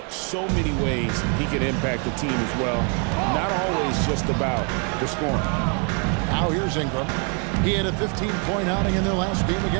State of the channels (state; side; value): quieter; left; 37.8 dB